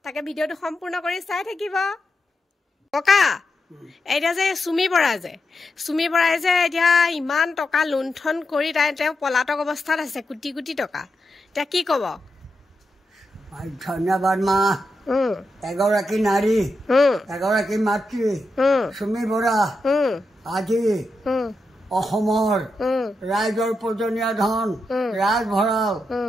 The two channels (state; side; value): normal; both; correlation 0.86